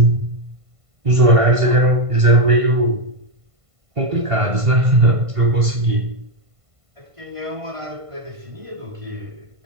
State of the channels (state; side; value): late; left; 1.5 ms